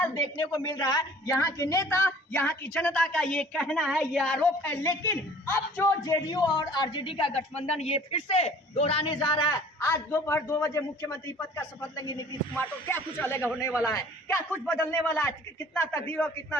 देखने को मिल रहा है। यहाँ के नेता, यहाँ की जनता का ये कहना है, ये आरोप है। लेकिन अब जो जेडीयू और आरजेडी का गठबंधन ये फिर से दोहराने जा रहा है। आज दोपहर 2 बजे मुख्यमंत्री पद का शपथ लेंगे नीतीश कुमार, तो क्या कुछ अलग होने वाला है? क्या कुछ बदलने वाला है? कितना तकदीर और कितना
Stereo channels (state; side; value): normal; both; correlation 0.50